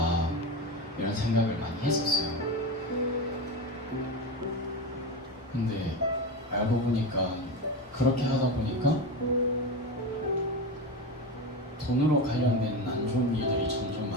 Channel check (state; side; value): normal; both; correlation 0.20